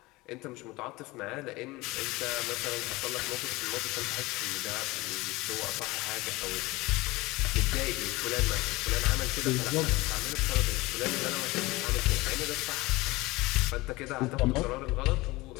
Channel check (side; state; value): right; quieter; 21.2 dB